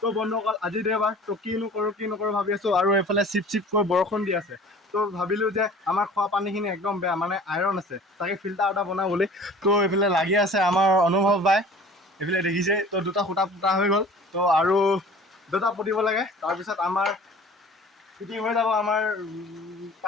বন্ধুসকল, আজি দেওবাৰ, তো কি নকৰোঁ ভাবি আছোঁ। আৰু এইফালে চিপকৈ বৰষুণ দি আছে। তো ভাবিলোঁ যে আমাৰ খোৱা পানীখিনি একদম বেয়া, মানে আইৰণ আছে, তাকে ফিল্টাৰ এটা বনাওঁ বুলি। তো এইফালে লাগি আছে আমাৰ অনুভৱ বাই, এইফালে দেখিছে। তো দুটা সূতা পুতা হৈ গ'ল, তো আৰু দুটা পুতিব লাগে। তাৰপিছত আমাৰ ফিটিং হৈ যাব আমাৰ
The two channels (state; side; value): normal; both; correlation 0.46